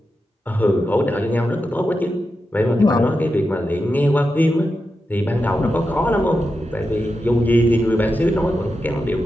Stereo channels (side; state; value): both; normal; correlation 0.89